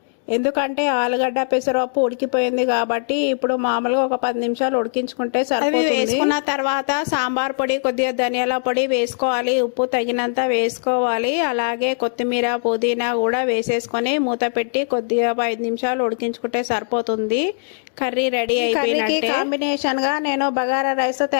ఎందుకంటే ఆలుగడ్డ పెసరపప్పు ఉడికిపోయింది కాబట్టి ఇప్పుడు మామూలుగా ఒక 10 నిమిషాలు ఉడికించుకుంటే సరిపోతుంది. వేసుకున్న తర్వాత సాంబార్ పొడి, కొద్దిగా ధనియాల పొడి వేసుకోవాలి. ఉప్పు తగినంత వేసుకోవాలి. అలాగే కొత్తిమీర, పుదీనా కూడా వేసేసుకొని మూత పెట్టి కొద్దిగా 5 నిమిషాలు ఉడికించుకుంటే సరిపోతుంది. కర్రీ రెడీ అయిపోయినట్టే. కాంబినేషన్ గా నేను బగారా రైస్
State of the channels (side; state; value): right; silent; digital silence